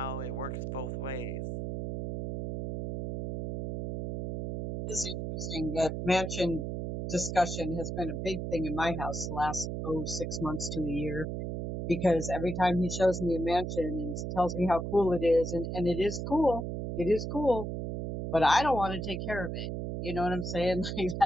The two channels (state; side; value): noise; right; hum, 4 dB below the sound